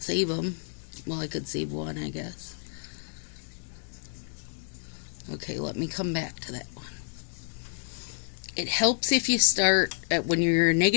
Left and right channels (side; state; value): right; silent; digital silence